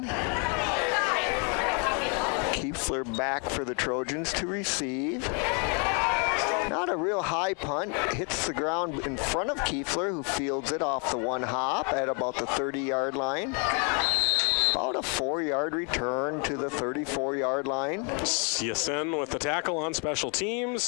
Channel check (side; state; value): right; quieter; 37.1 dB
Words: Kiefler back for the Trojans to receive. Not a real high punt. Hits the ground in front of Kiefler, who fields it off the 1 hop at about the 30-yard line. About a 4-yard return to the 34-yard line. Yasin with the tackle on special